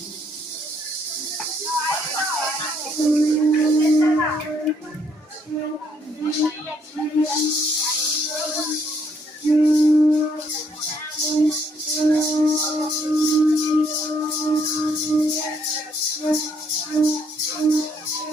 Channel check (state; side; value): normal; both; correlation 0.70